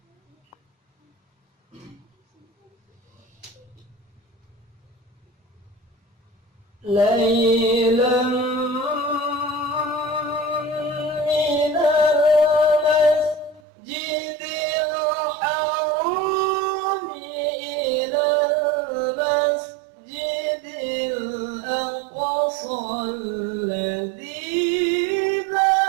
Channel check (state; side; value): drops out; left; at 13.6 s